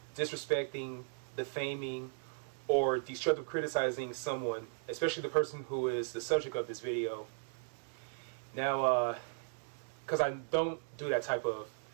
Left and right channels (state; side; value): silent; left; digital silence